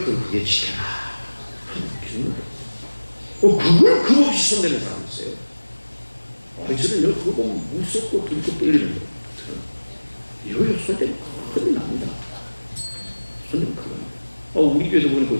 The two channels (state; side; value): inverted; both; correlation -1.00